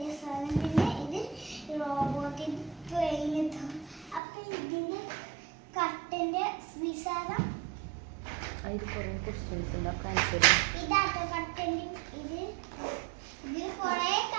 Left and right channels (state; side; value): drops out; left; at 4.2 s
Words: സാധനം, പിന്നെ ഇത് റോബോട്ടിന്റെ ട്രെയിൻ. അപ്പൊ ഇതിന്റെ കട്ടന്റെ വിശാലം ഇതാട്ടോ കട്ടന്റെ. ഇത് കൊറേ